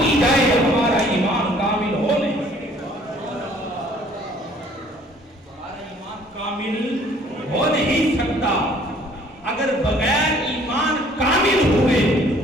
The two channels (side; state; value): both; normal; correlation 0.57